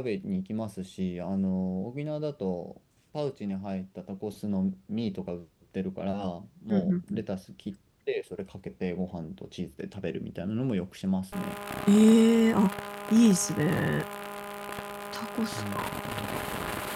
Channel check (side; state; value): both; identical; correlation 1.00